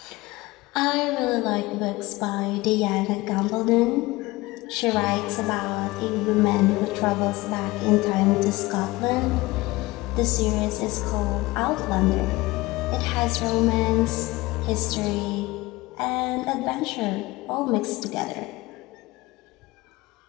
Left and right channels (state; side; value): quieter; right; 20.6 dB